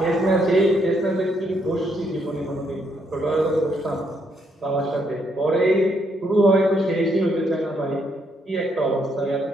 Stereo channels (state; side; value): normal; both; correlation 0.74